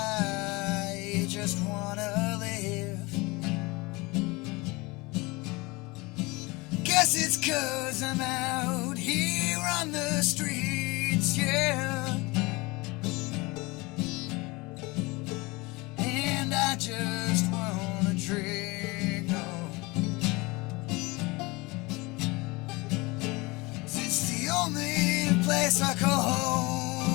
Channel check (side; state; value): right; quieter; 24.3 dB